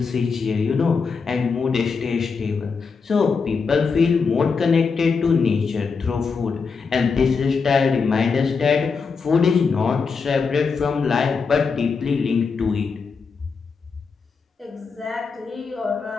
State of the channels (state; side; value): quieter; right; 5.2 dB